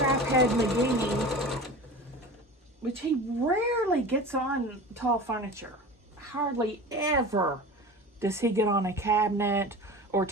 McGee, which he rarely gets on tall furniture. Hardly ever does he get on a cabinet or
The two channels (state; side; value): normal; both; correlation 0.34